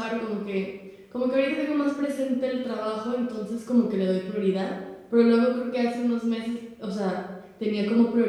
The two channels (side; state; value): both; identical; correlation 1.00